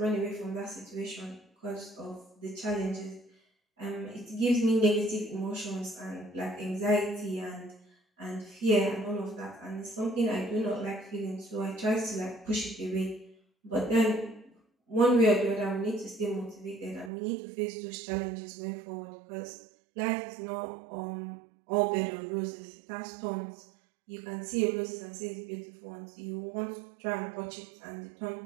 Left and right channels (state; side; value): drops out; left; at 17.1 s